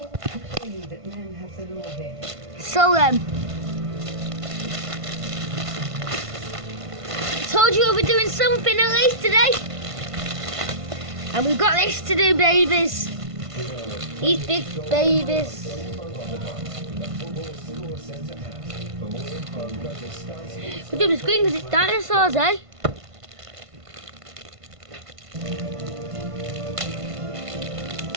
So then, told you we'll be doing something at least today. And we've got this to do, babies. These big babies. We're doing the screen because it's dinosaurs, eh?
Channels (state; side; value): late; left; 1.5 ms